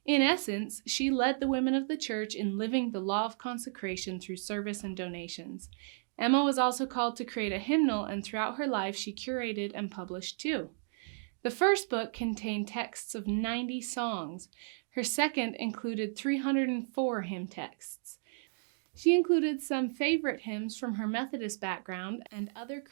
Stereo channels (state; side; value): silent; left; digital silence